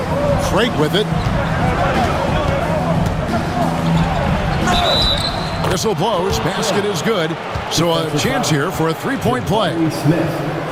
Craig with it. Whistle blows. Basket is good. So a chance here for a three-point play.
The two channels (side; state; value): both; identical; correlation 1.00